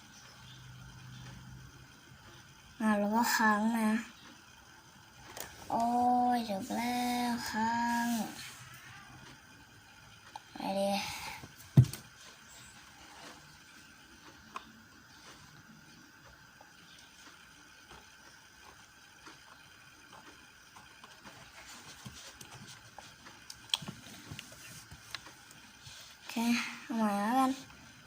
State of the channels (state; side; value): identical; both; correlation 1.00